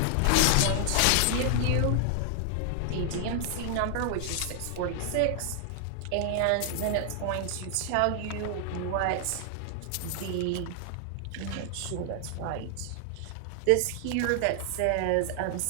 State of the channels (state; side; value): different; both; correlation 0.00